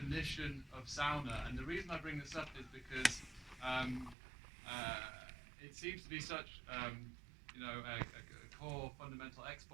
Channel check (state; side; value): drops out; left; at 4.2 s